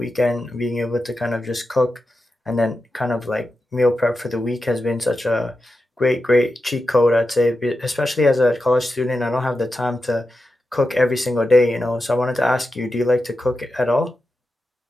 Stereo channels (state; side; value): normal; both; correlation 0.90